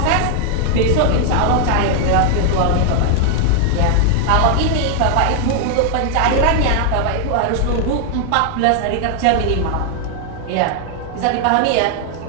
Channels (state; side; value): different; both; correlation 0.00